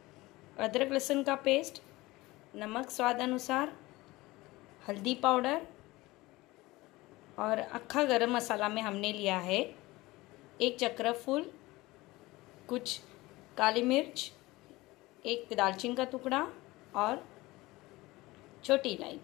अदरक लहसुन का पेस्ट, नमक स्वाद अनुसार, हल्दी पाउडर और अक्खा गरम मसाला में हमने लिया है 1 चक्र फूल, कुछ काली मिर्च, 1 दालचीनी का टुकड़ा और छोटी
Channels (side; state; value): right; quieter; 20.2 dB